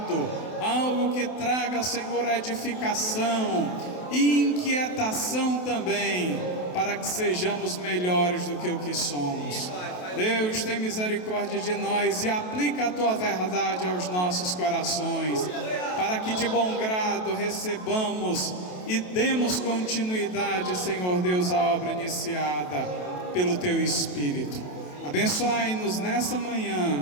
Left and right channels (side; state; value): right; late; 28 ms